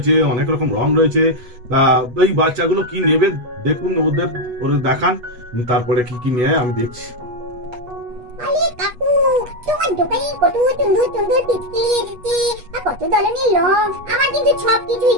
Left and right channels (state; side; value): late; left; 8.2 ms